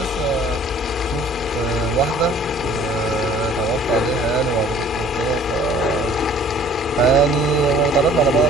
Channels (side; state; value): both; normal; correlation 0.53